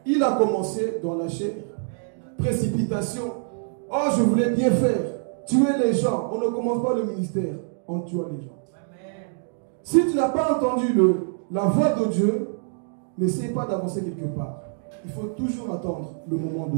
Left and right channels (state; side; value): silent; left; digital silence